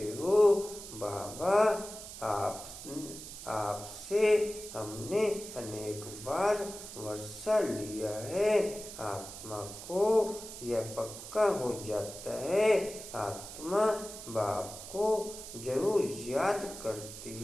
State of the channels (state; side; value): noise; right; hiss, 12 dB below the sound